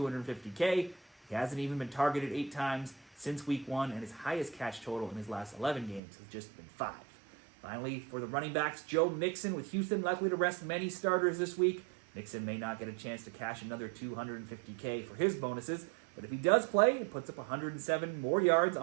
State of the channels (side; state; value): left; drops out; at 6.0 s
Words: He hasn't even been targeted 8 times since week 1, and his highest catch total in his last 11 games has just been 5. Finally, for the running backs, Joe Mixon, with Houston likely to rest many starters this week. Mixon may not get a chance to cash another $250K for his bonuses, but if he does play and puts up 107 more yards